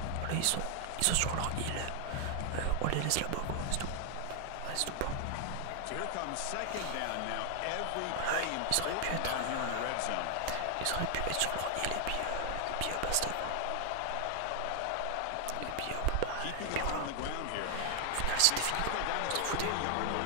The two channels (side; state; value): both; different; correlation 0.00